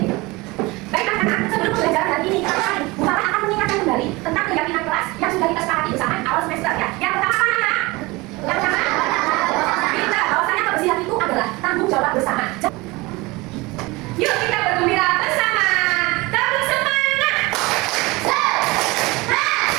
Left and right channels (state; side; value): quieter; left; 23.0 dB